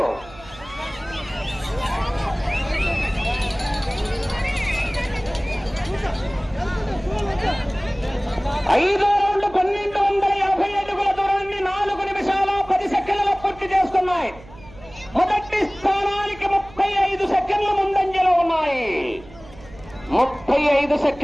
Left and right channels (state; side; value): noise; right; hum, 21 dB below the sound